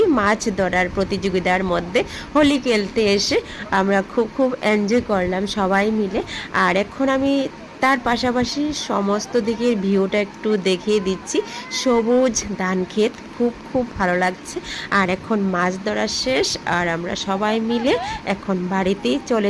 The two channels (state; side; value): identical; both; correlation 1.00